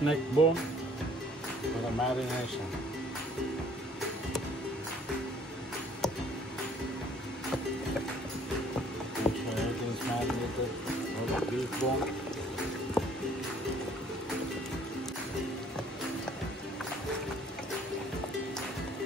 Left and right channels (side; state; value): both; normal; correlation 0.58